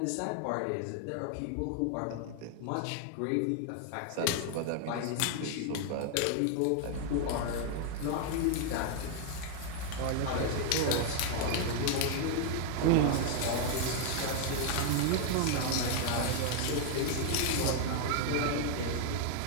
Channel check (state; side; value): different; both; correlation 0.00